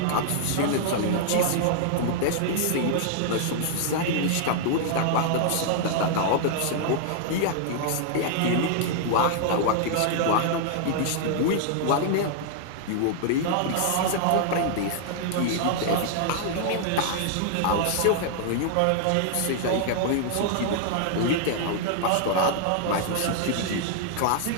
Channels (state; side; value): different; both; correlation -0.01